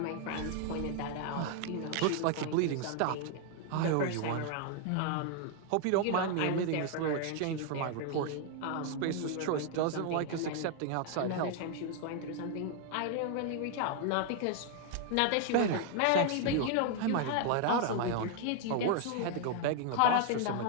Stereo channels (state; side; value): different; both; correlation 0.00